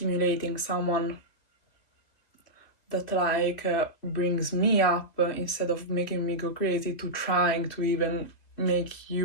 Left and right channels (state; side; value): late; right; 2.2 ms